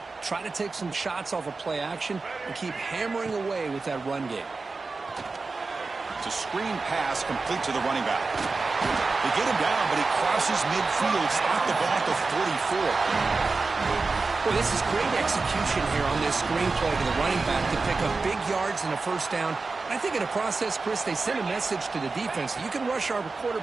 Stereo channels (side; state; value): left; quieter; 4.0 dB